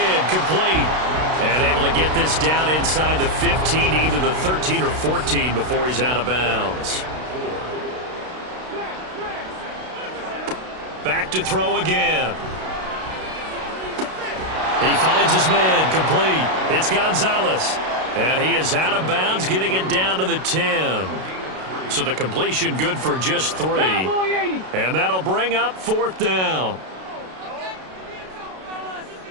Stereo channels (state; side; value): late; left; 32 ms